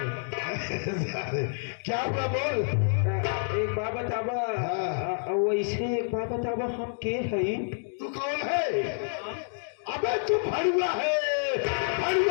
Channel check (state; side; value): silent; right; digital silence